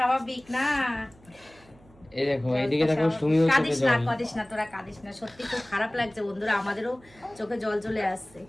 না। এই দেখো এইদিকে দেখো সুমিও চোখে জল। কাঁদিস না তোরা, কাঁদিস না, সত্যি খুব খারাপ লাগছে বন্ধুরা, আমাদেরও চোখে জল চলে আসছে।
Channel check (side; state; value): right; noise; hum, 27 dB below the sound